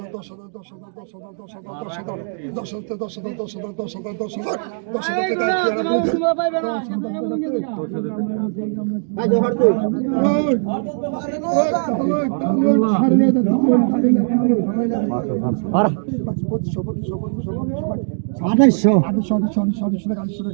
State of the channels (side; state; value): left; silent; 66 dB below the other